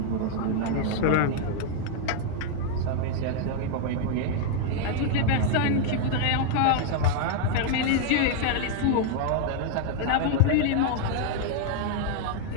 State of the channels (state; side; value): different; both; correlation 0.00